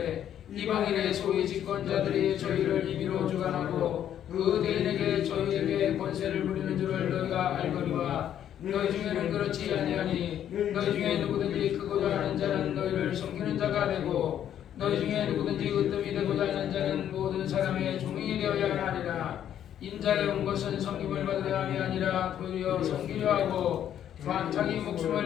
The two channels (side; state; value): right; quieter; 10.3 dB